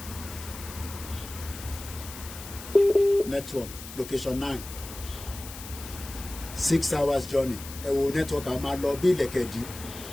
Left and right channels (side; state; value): left; noise; hiss, 13 dB below the sound